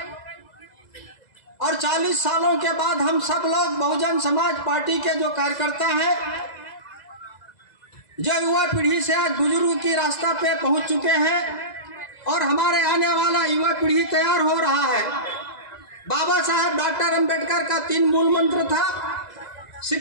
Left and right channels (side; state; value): right; late; 2.0 ms